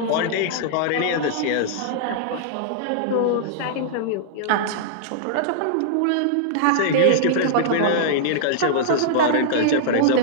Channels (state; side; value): different; both; correlation -0.01